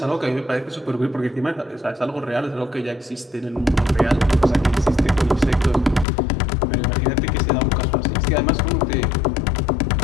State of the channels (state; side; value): drops out; right; at 6.1 s